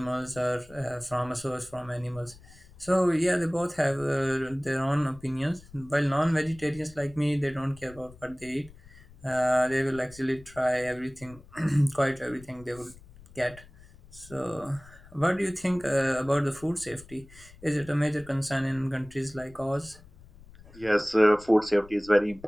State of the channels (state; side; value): noise; left; rumble, 22 dB below the sound